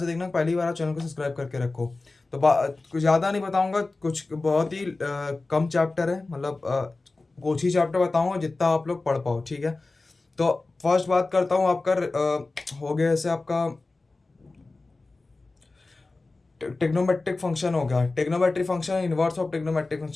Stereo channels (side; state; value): right; quieter; 3.4 dB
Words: देखना, पहली बार आप चैनल को सब्सक्राइब करके रखो. तो कुछ ज़्यादा नहीं बताऊँगा, कुछ बहुत ही कम चैप्टर है, मतलब कुछ ही चैप्टर बताऊँगा जितना आप लोग पढ़ पाओ, ठीक है. तो फर्स्ट बात करता हूँ आपका हो गया ऐसे आपका टेक्नोमेट्रिक फंक्शन हो गया, trigonometric function, inverse of trigonometric